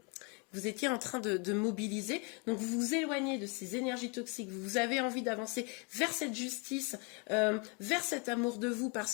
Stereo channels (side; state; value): right; quieter; 33.7 dB